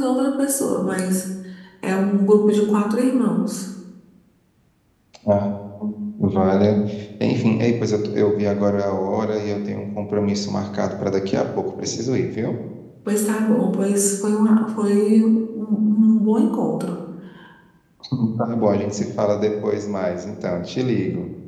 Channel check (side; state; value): both; identical; correlation 1.00